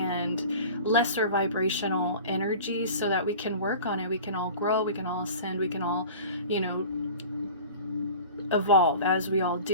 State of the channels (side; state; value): both; inverted; correlation -0.38